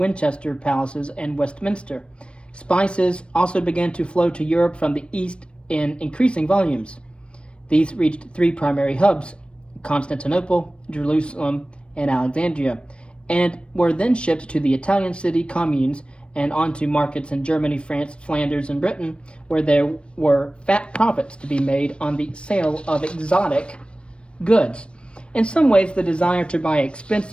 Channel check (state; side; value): late; right; 0.058 ms